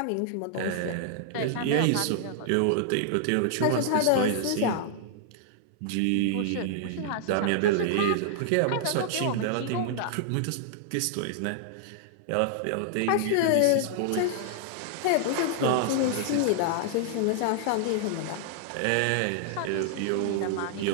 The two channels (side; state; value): both; different; correlation -0.01